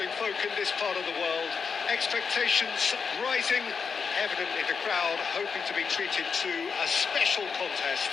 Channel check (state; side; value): quieter; right; 5.7 dB